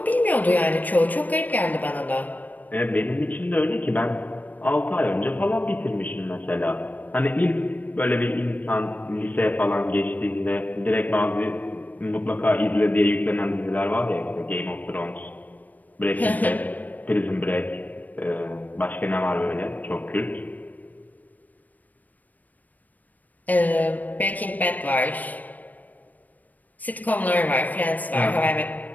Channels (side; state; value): right; late; 0.080 ms